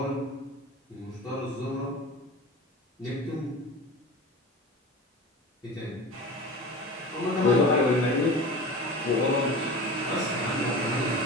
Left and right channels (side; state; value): both; normal; correlation 0.33